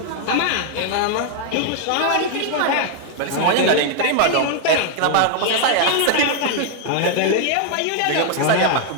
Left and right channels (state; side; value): different; both; correlation 0.00